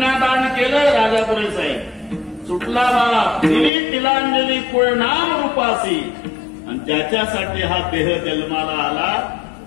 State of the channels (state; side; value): drops out; right; at 3.7 s